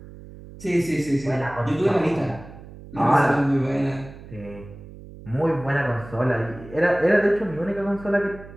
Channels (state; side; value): noise; right; hum, 17 dB below the sound